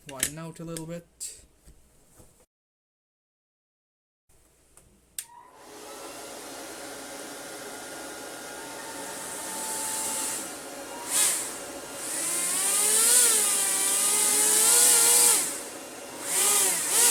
widen out a little bit.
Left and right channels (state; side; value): identical; both; correlation 1.00